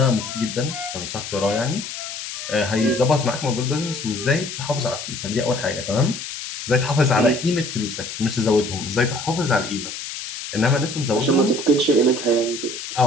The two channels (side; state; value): left; noise; hiss, 8 dB below the sound